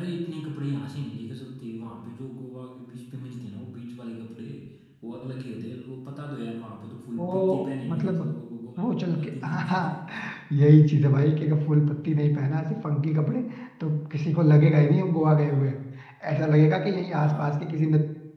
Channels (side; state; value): both; identical; correlation 1.00